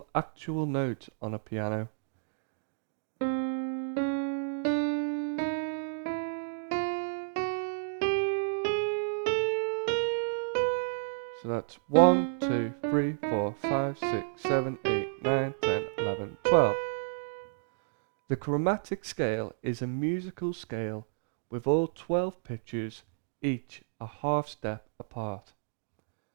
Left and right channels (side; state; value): left; silent; digital silence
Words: actual notes on a piano. So that's 1, 2, 3, 4, 5, 6, 7, 8, 9, 10, 11, 12. The chromatic scale is a musical scale with all 12 pitches, each a half step apart.